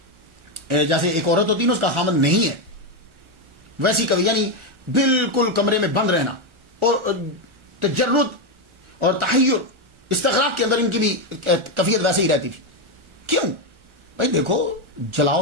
جیسے ایک عورت ہوتی ہے نا اس کا خامن نہیں ہے، ویسی کبھی یعنی بالکل کمرے میں بند رہنا اور تجرد اور تحیر استغراق کے اندر ان کی بھی کیفیت ویسے ہی رہتی تھی. کیوں بھائی؟ دیکھو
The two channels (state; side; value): late; left; 1.4 ms